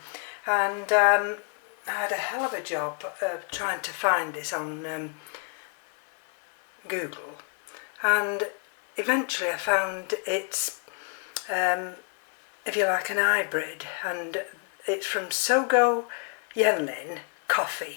And I had a hell of a job trying to find this on Google, and eventually I found it's if you like, an hybrid, and it's from Chia E Yenlin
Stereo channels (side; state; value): right; quieter; 40.0 dB